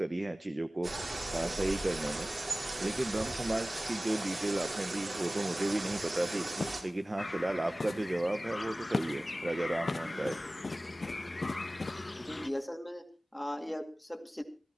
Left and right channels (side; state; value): both; normal; correlation 0.97